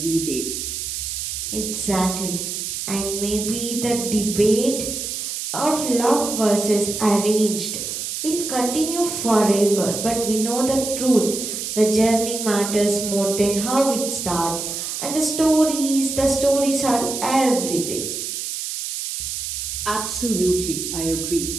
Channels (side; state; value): right; noise; hiss, 4 dB below the sound